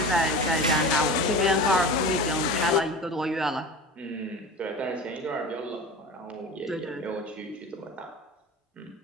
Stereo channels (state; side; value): normal; both; correlation 0.33